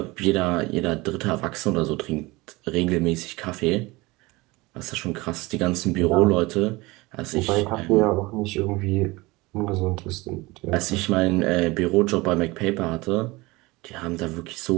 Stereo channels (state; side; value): quieter; left; 22.2 dB